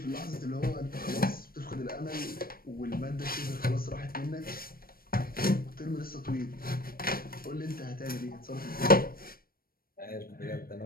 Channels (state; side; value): late; right; 0.43 ms